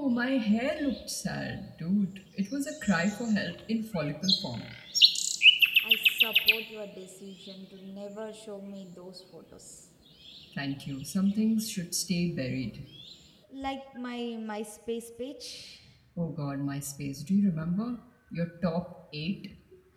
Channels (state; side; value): identical; both; correlation 1.00